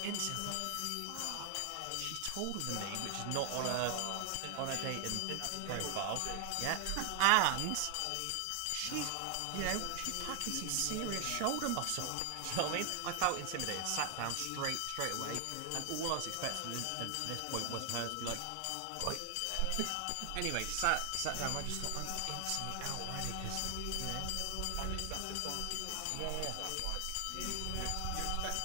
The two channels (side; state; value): both; different; correlation 0.00